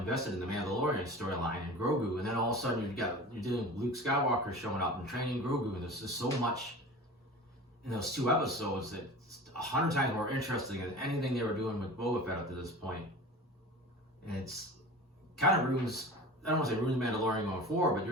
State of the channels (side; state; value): both; normal; correlation 0.36